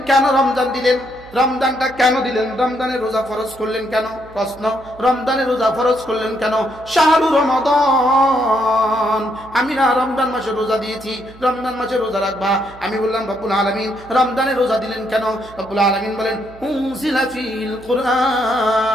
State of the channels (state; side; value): noise; right; hum, 22 dB below the sound